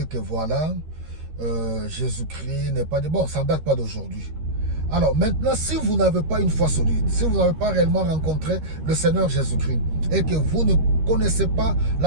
que voilà, Jésus-Christ n'est pas de bon, ça ne date pas d'aujourd'hui. Alors maintenant, si vous n'avez pas une foi solide, si vous n'avez pas réellement rencontré le Seigneur Jésus-Christ et que vous ne connaissez pas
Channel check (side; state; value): left; late; 13 ms